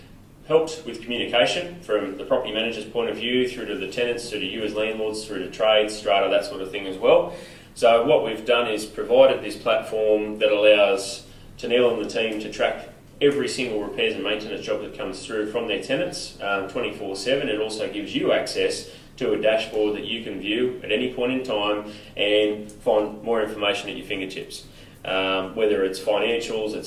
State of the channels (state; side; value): identical; both; correlation 1.00